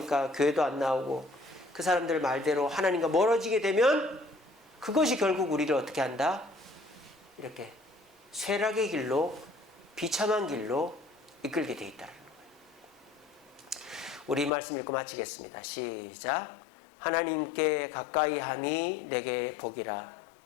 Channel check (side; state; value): right; drops out; at 14.5 s